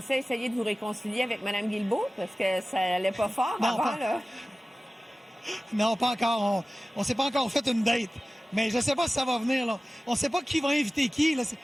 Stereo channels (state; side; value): normal; both; correlation 0.96